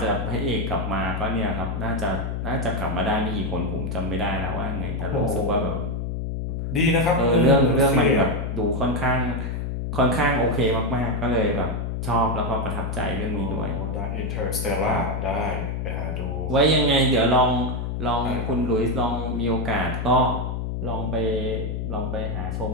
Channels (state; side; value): noise; left; hum, 3 dB below the sound